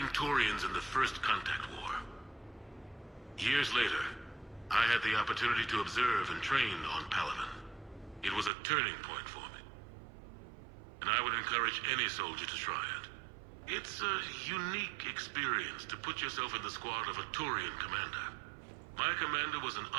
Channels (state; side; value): drops out; left; at 8.5 s